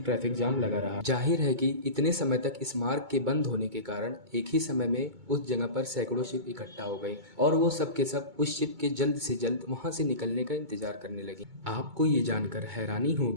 ट्रैफिक जाम लगा रहा। जाहिर है कि इतने समय तक इस मार्ग के बंद होने के कारण एक ही समय में उस जगह पर सैकड़ों शिप इकट्ठा हो गई और वो सब के सब उस शिप के जल्द से जल्द वहां से निकलने का इंतजार करने लगी। आपको ये जानकर हैरानी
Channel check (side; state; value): left; late; 2.2 ms